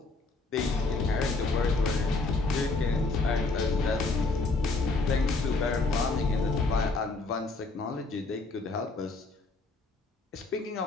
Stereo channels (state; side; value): quieter; right; 3.5 dB